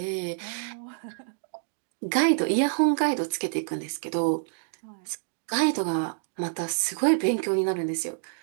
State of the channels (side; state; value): left; silent; digital silence